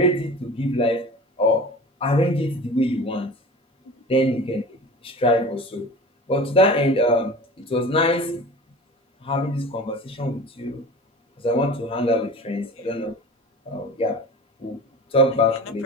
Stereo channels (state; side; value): normal; both; correlation 0.37